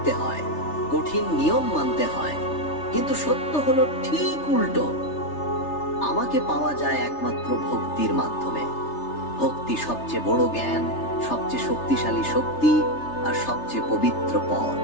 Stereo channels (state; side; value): late; right; 3.3 ms